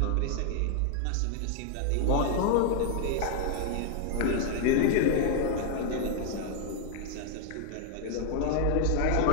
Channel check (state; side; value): different; both; correlation 0.00